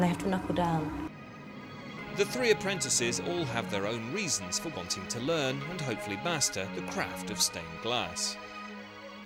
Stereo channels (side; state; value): both; identical; correlation 1.00